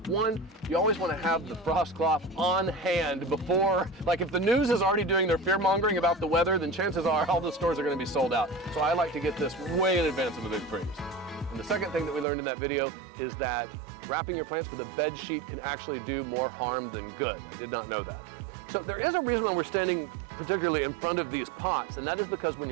One, you always want to have the frost cloth on hand before, like if the news is already doing their fear mongering about the weather, then chances are all the stores are going to be sold out. So I like to get this way in advance of a big freeze. And the second thing that we learned in that video is that wrapping your plants with a bed sheet can actually do more harm than good. I did not know that. So there is a reason why we're standing particularly in front of these pots, and that is because when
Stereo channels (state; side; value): drops out; left; at 12.2 s